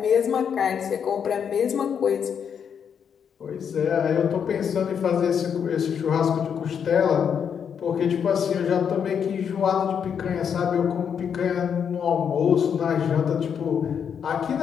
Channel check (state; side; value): quieter; right; 7.5 dB